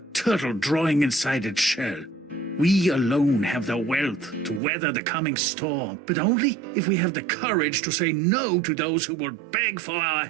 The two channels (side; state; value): left; drops out; at 4.6 s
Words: turtle drawing inside its shell. We alone have the wealth to weather the coming storm, but only if we have the courage to say no to those who will beg for our